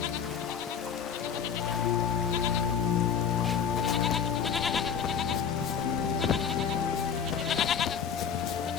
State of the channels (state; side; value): quieter; right; 7.4 dB